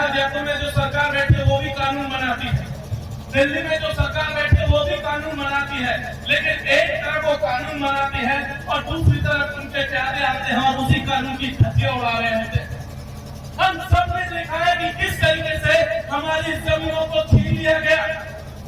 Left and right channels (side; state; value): both; identical; correlation 1.00